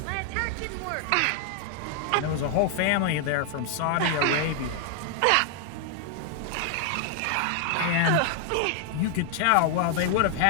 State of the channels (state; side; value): different; both; correlation 0.00